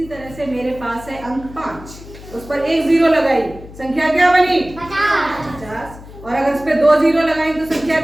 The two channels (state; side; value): noise; left; hum, 17 dB below the sound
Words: तरह से मेरे पास है अंक 5, उस पर एक जीरो लगाई, संख्या क्या बनी? 50। और अगर उस पर 2 जीरो लगाई तो संख्या